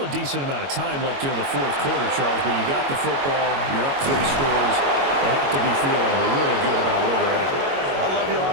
a decent amount of time left here in the 4th quarter, Charles, but you got the football, you're up 3 scores. They have to be feeling really good about where they're at. I love your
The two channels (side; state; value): left; late; 22 ms